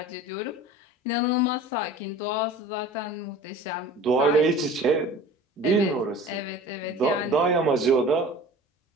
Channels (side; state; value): both; normal; correlation 0.42